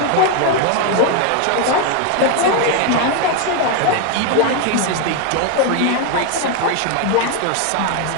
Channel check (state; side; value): different; both; correlation 0.01